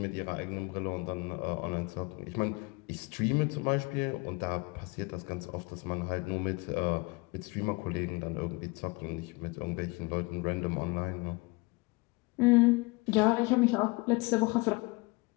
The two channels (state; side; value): quieter; right; 26.3 dB